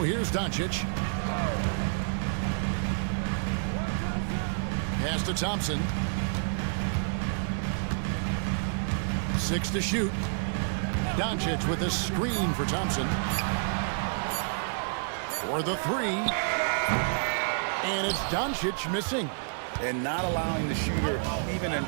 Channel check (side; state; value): left; silent; digital silence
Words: here's Doncic. Pass to Thompson. 6 to shoot. Doncic with a screen for Thompson. For the 3. And it's Doncic missing. And not allowing the shooter even an